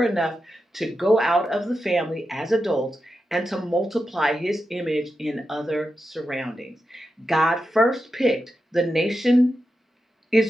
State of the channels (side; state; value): both; normal; correlation 0.89